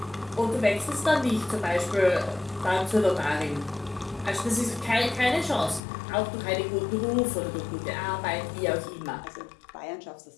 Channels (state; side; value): drops out; right; at 5.8 s